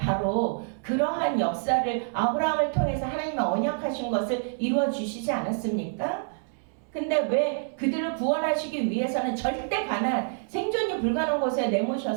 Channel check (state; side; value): silent; left; digital silence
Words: 바로 그러한 역사를 아브라함을 통해서 하나님의 언약하신 것을 이루어 주시지 않았습니까? 근데 왜 그들을 구원하시기 위해서는 절대 가난, 생존이 불가능한 곳에